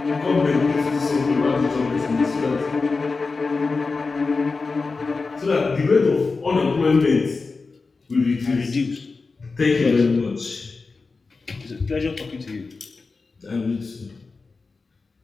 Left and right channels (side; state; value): right; quieter; 4.1 dB